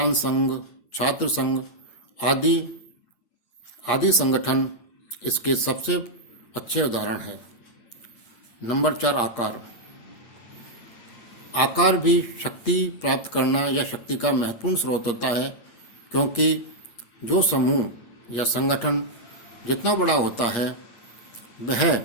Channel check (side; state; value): right; late; 8.5 ms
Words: संघ, छात्र संघ आदि संगठन इसके सबसे अच्छे उदाहरण है। नंबर 4, आकार। आकार भी शक्ति प्राप्त करना या शक्ति का महत्वपूर्ण स्रोत होता है, क्योंकि जो समूह या संगठन जितना बड़ा होता है वह